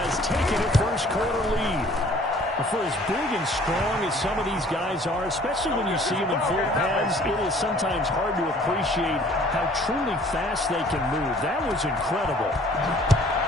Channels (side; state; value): both; normal; correlation 0.55